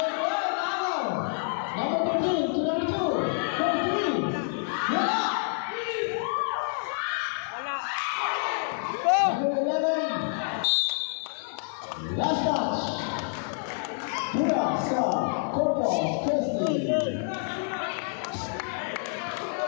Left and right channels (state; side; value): silent; right; 59 dB below the other